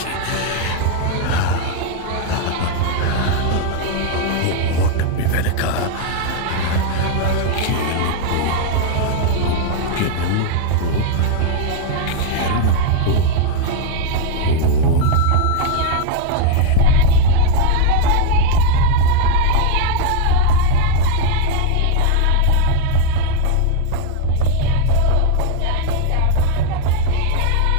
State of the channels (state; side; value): different; both; correlation 0.00